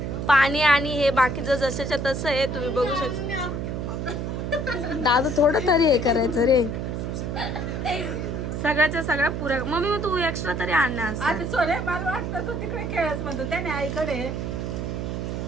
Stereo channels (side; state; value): right; noise; hum, 3 dB below the sound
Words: पाणी आणि हे बाकीचं जसंच्या तसं आहे, तुम्ही बघू शकता. दादा थोडं तरी हे करायचं रे. सगळ्याच्या सगळ्या पुऱ्या. मम्मी मग तू एक्स्ट्रा तरी आणणार असं.